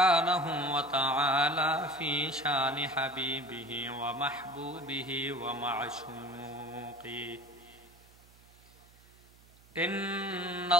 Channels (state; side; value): noise; right; hum, 27 dB below the sound